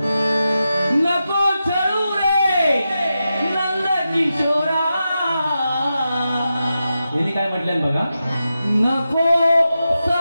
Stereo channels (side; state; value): both; inverted; correlation -0.90